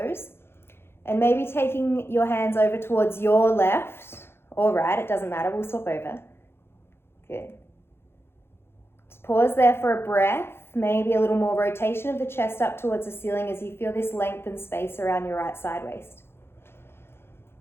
And maybe taking your hands over towards your left or right, it doesn't matter, we'll swap over. Good. Just pause there for a breath. Maybe a little more rotation of the chest up towards the ceiling as you feel this length and space around your right side waist.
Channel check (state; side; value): late; right; 0.11 ms